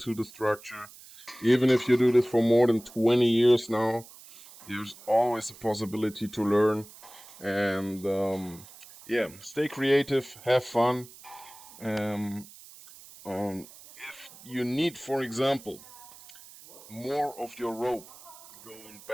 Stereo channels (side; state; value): right; noise; hiss, 20 dB below the sound